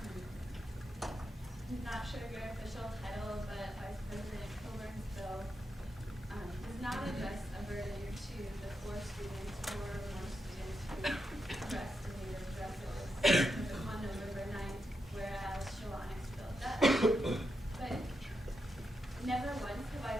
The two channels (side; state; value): both; normal; correlation 0.85